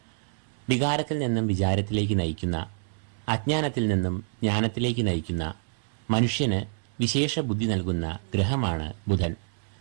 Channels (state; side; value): silent; left; digital silence